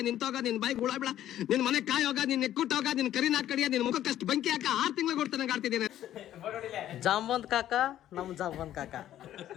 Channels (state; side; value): quieter; right; 12.1 dB